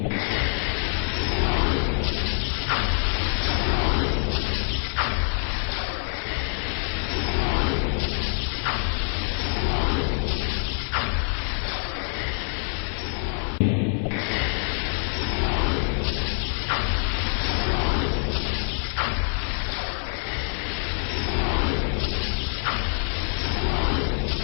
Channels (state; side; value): silent; right; 55 dB below the other